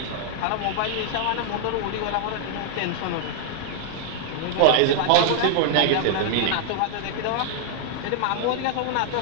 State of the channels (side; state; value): both; different; correlation 0.00